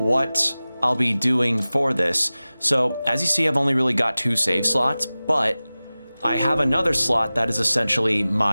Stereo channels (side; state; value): both; inverted; correlation -0.97